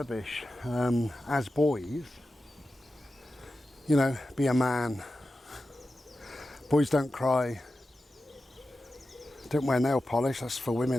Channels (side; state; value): both; normal; correlation 0.93